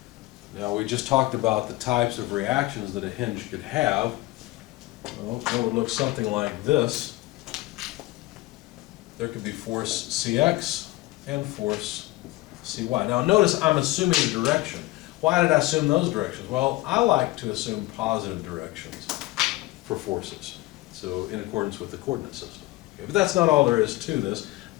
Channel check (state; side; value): quieter; right; 19.6 dB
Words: Now we just talked about the types of reactions that a hinge could have. Well, it would look something like this. There could be force Cx and force Cy. Now notice I'm assuming a direction. Why did I assume those directions? Well, I like to assume positive directions for forces, so in accordance with the coordinate system. Okay, but that's not all there is to this.